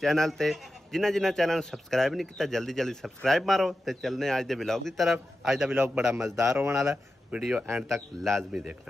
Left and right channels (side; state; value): both; normal; correlation 0.92